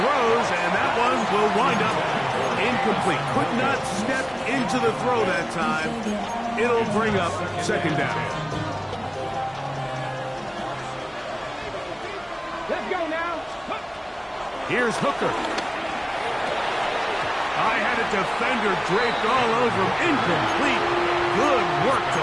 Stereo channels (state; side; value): identical; both; correlation 1.00